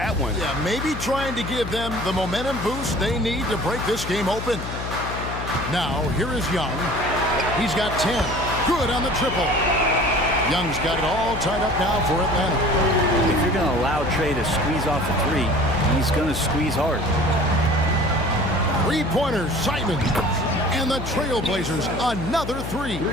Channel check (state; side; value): noise; left; hum, 7 dB below the sound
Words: one. Yeah, maybe trying to give them the momentum boost they need to break this game open. Now, here is Young. He's got 10. Good on the triple. Young's got it all tied up now for Atlanta. If you're going to allow Trey to squeeze off a three, he's going to squeeze hard. Three-pointers, Simon. And the Trailblazers, another three.